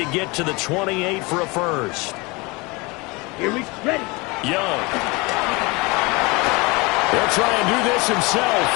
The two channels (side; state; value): right; quieter; 25.8 dB